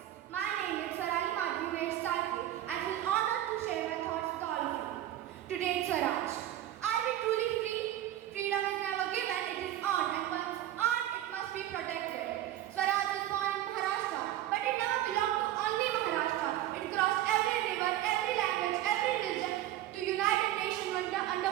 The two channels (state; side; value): quieter; left; 13.1 dB